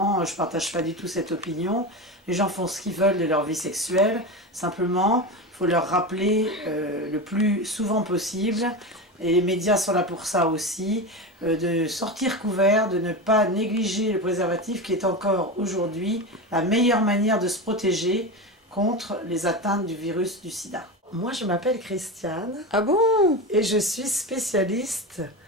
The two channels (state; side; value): normal; both; correlation 0.22